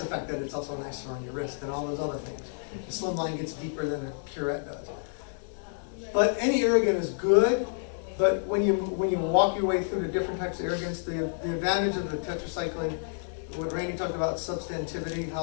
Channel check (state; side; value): silent; right; 58 dB below the other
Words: the fact that it's also nicer on your wrist and all those other things. The slim line gets deeper than a curette does. But any irrigant is good, but when you walk your way through the different types of irrigants, the advantage of the tetracycline, what Randy talked about, substantivity, how